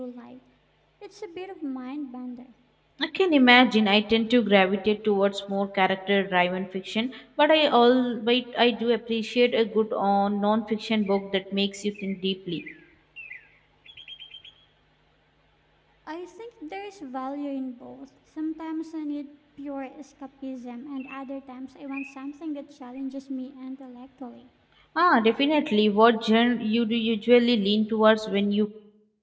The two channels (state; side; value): identical; both; correlation 1.00